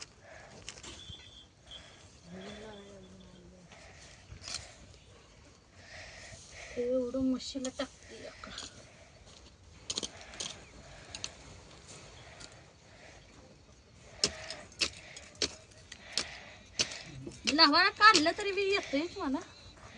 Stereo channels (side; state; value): both; identical; correlation 1.00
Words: एवढं मशीला टाकते का? लहान काढलं तरी बी येतंय मला.